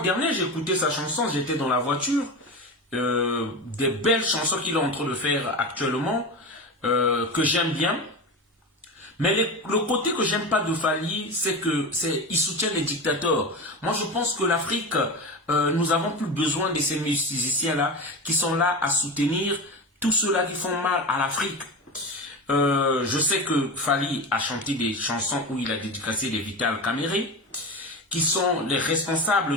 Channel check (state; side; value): normal; both; correlation 0.24